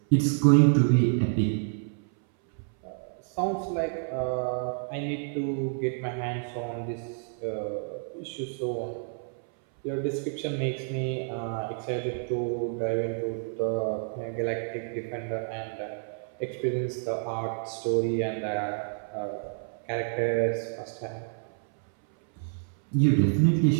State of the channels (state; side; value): silent; left; 59 dB below the other